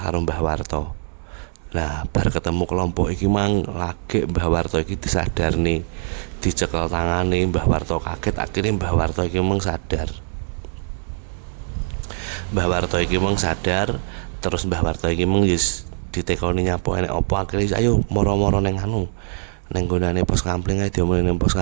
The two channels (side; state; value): left; silent; 64 dB below the other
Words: karo Mbah Warto. Nah, bar ketemu kelompok iki mang lagi Mbah Warto iki disadarne, dicekel tangane. Mbah Warto kaget, akhirnya Mbah Warto iki mung sadar. Mbah Warto iki mung sadar, terus Mbah Warto iki mung wis ditekoni nyapu enek apa, akhire ayo moro-moro ning anu. Ning gonane pos kampling ae diomongin ning pos